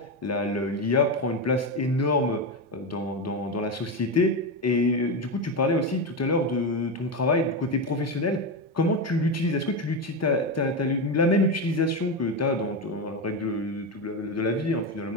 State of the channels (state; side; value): normal; both; correlation 0.13